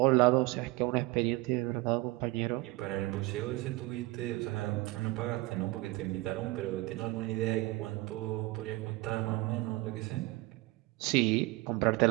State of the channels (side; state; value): left; quieter; 21.0 dB